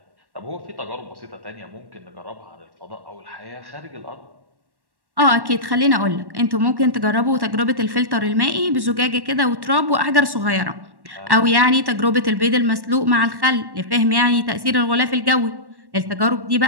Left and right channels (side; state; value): left; late; 1.1 ms